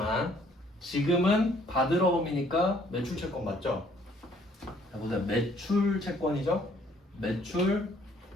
지금은 받으러 봄이니까 매출 채권 맞죠? 자 보세요. 매출 채권이죠? 매출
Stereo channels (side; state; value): both; normal; correlation 0.62